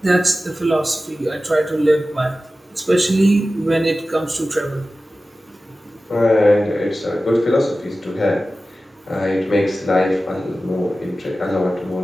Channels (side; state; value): both; normal; correlation 0.95